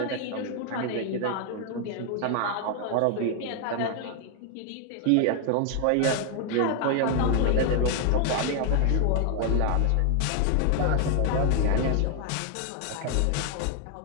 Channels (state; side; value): different; both; correlation 0.00